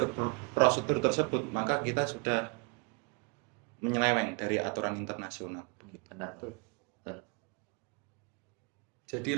prosedur tersebut, maka kita sudah menyeleweng dari aturan internasional. Benar. Jadi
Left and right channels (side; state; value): left; quieter; 32.4 dB